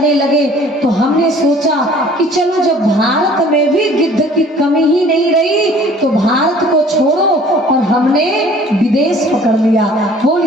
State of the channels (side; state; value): both; normal; correlation 0.52